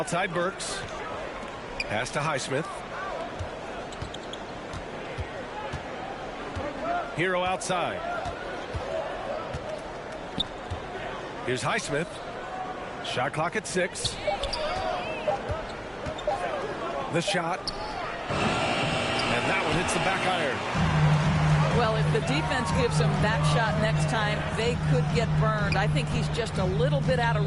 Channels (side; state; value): both; identical; correlation 1.00